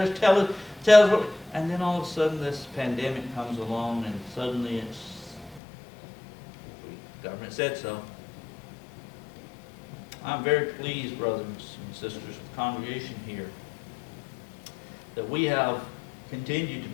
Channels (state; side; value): drops out; right; at 5.6 s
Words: us tell us what... And then all of a sudden this pandemic comes along, and suddenly the government said so. I'm very pleased, brothers and sisters, with the congregation here, that we have continued